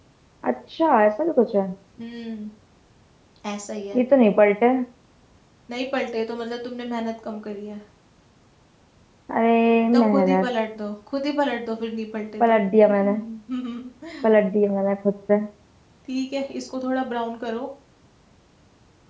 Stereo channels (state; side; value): identical; both; correlation 1.00